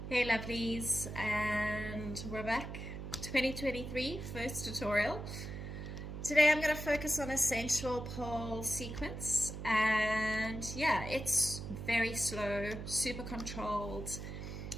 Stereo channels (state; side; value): noise; right; hum, 7 dB below the sound